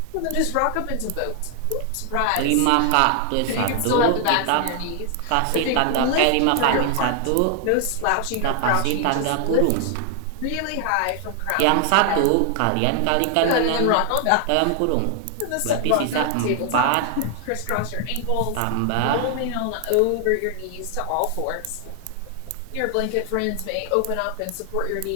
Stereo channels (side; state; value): both; different; correlation 0.00